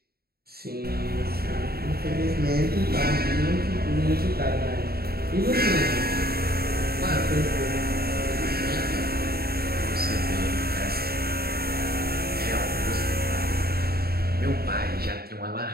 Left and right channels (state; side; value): late; left; 0.45 ms